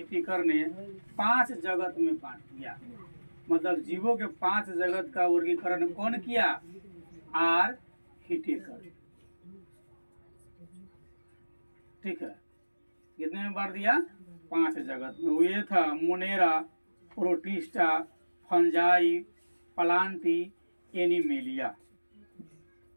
ने 5 जगत में बांट दिया। मतलब जीवों के 5 जगत का वर्गीकरण कौन किया? आर हिटिकर, ठीक है। कितने में बांट दिया? 5 जगत में। वो ये था Monera, protista, fungi, Plantae, animalia,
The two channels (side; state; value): both; inverted; correlation -1.00